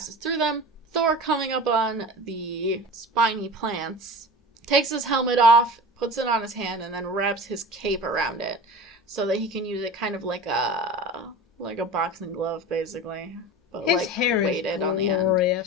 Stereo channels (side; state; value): both; normal; correlation 0.34